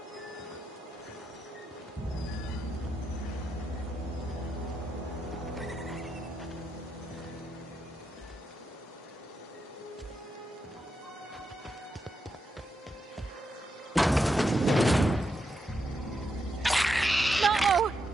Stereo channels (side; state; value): both; normal; correlation 0.84